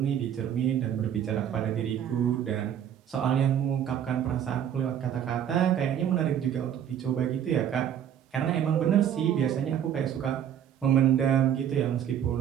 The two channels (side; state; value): left; quieter; 9.5 dB